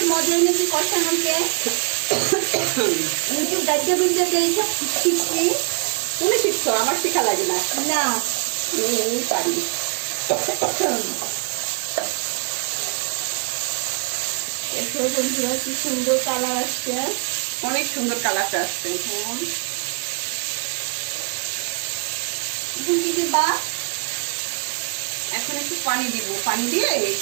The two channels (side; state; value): left; quieter; 37.7 dB